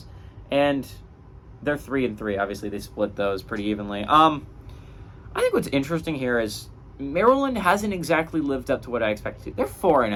And they're 3-3. Obviously, they split those pretty evenly. I think what's interesting here is Maryland hasn't exactly lived up to what I expected. They're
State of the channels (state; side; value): identical; both; correlation 1.00